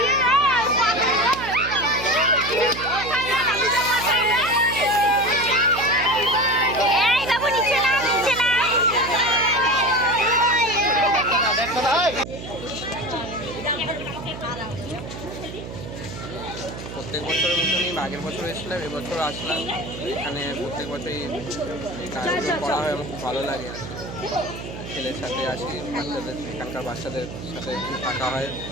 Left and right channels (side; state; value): right; noise; hum, 10 dB below the sound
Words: প্রত্যেক বছরের মতনই আগের বছর এসেছিলাম, এবছর আসলাম। এখানে প্রত্যেক বছরই আয়োজন করা হয়, আমার খুব ভালো লাগে। আর ছেলের সাথে আসি, বাচ্চাদের এখানকার বাচ্চাদের সাথে একটু থাকা হয়,